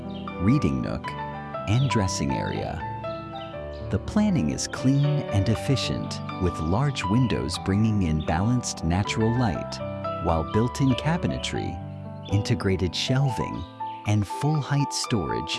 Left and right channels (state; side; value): identical; both; correlation 1.00